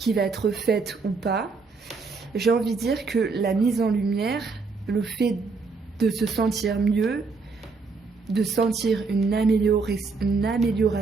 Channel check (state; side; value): quieter; left; 4.4 dB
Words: va être faite ou pas, j'ai envie de dire que la mise en lumière, le fait de se sentir mieux, de sentir une